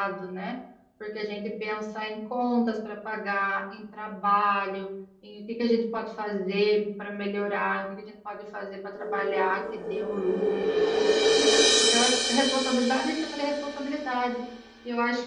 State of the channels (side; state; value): both; identical; correlation 1.00